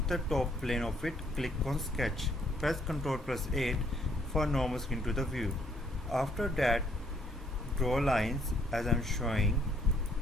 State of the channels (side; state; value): both; normal; correlation 0.67